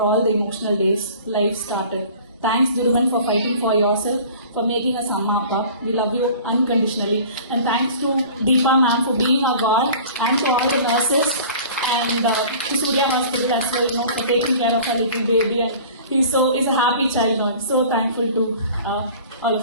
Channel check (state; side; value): inverted; both; correlation -0.44